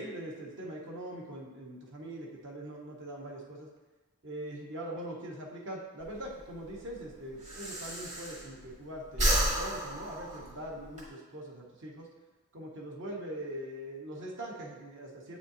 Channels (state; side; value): normal; both; correlation 0.39